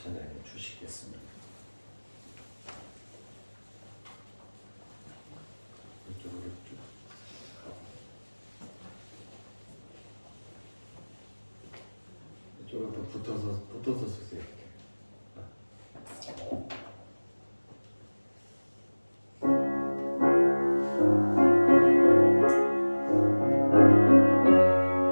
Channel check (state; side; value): inverted; both; correlation -1.00